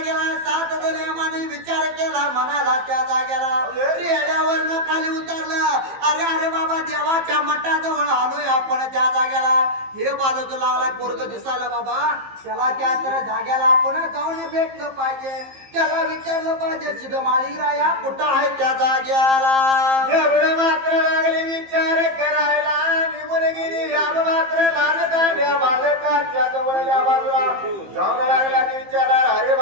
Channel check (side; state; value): left; late; 15 ms